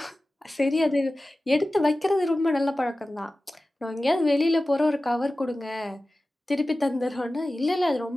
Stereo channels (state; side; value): normal; both; correlation 0.96